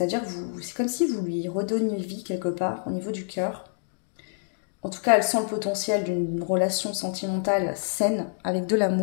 que c'est comme si vous lui redonniez vie quelque part au niveau du cœur. En tout cas, elle sent le potentiel d'une relation sentimentale saine avec de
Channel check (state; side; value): silent; right; digital silence